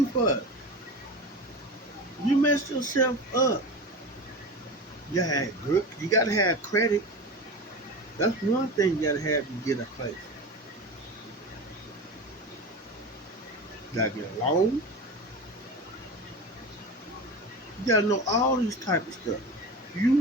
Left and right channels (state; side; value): normal; both; correlation 0.29